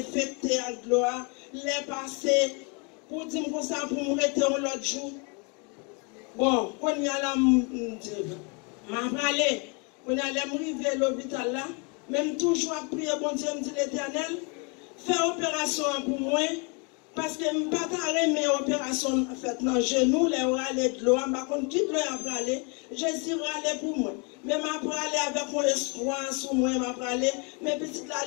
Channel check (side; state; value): right; quieter; 33.2 dB